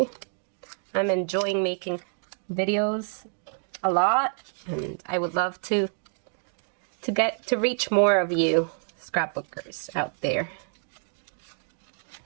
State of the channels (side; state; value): left; silent; 60 dB below the other